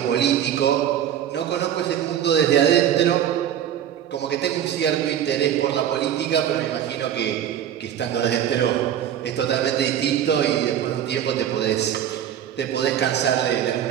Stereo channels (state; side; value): quieter; left; 10.2 dB